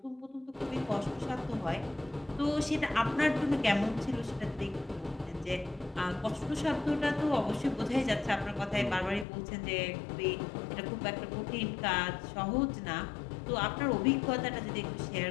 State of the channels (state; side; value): drops out; right; at 9.2 s